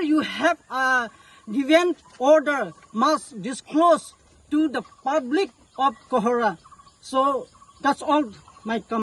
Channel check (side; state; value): both; identical; correlation 1.00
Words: you have given order must disclose to the public of Kohora. So that's all my